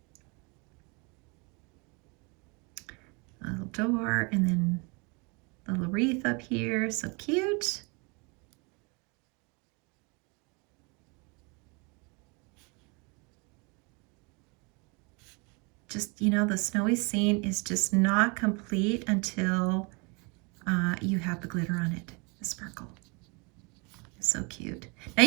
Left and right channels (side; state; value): left; quieter; 31.1 dB